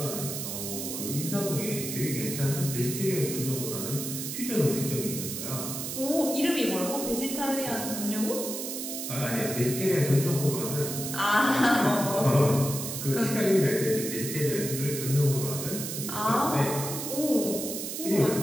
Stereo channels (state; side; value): noise; right; hiss, 5 dB below the sound